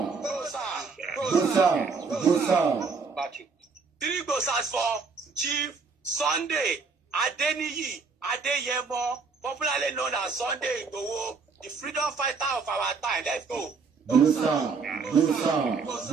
3 glosars for Chief Sunday Adeniyi Adeyemo, popularly known as Sunday Igboho, the freedom fighter of our time. Let's go. 3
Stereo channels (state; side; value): quieter; left; 4.8 dB